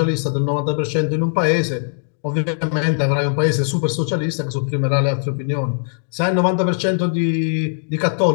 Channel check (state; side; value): silent; right; digital silence